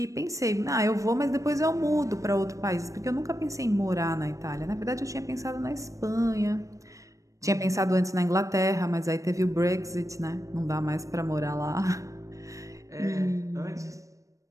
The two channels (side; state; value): left; late; 0.16 ms